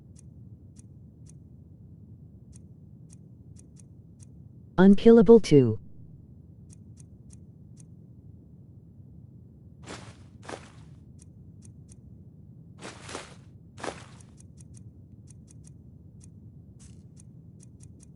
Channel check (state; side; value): identical; both; correlation 1.00